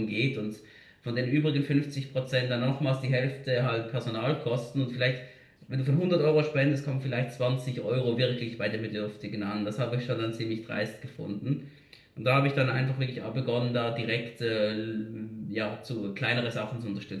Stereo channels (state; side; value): identical; both; correlation 1.00